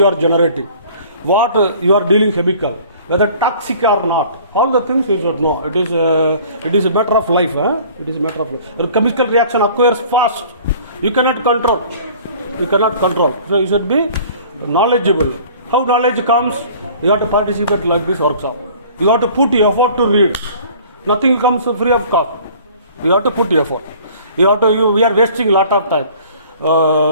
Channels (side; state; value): both; inverted; correlation -0.49